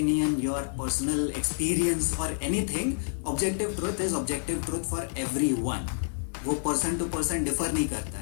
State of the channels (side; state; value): right; silent; digital silence